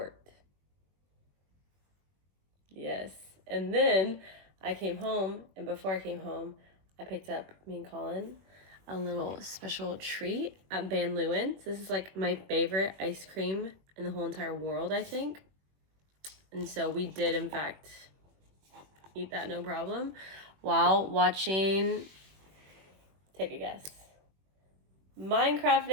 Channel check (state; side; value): late; left; 21 ms